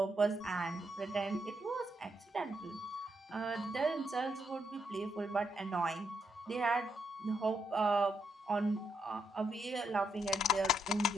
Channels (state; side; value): normal; both; correlation 0.79